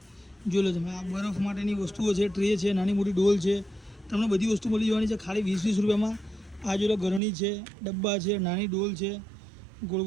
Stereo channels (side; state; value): left; drops out; at 7.2 s